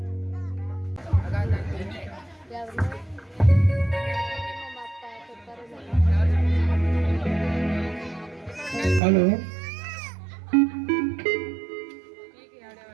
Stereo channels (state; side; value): drops out; left; at 9.0 s